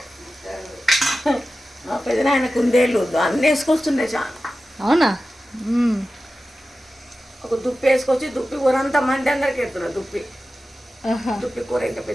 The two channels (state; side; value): normal; both; correlation 0.94